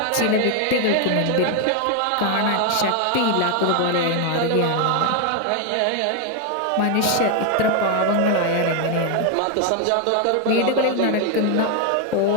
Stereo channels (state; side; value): different; both; correlation 0.01